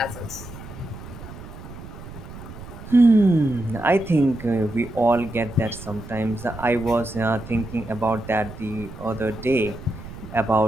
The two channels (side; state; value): right; noise; rumble, 14 dB below the sound